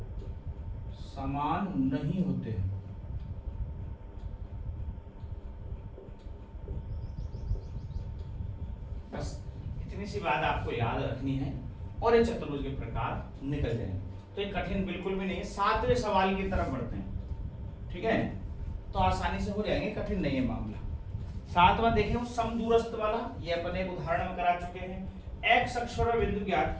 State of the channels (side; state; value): both; identical; correlation 1.00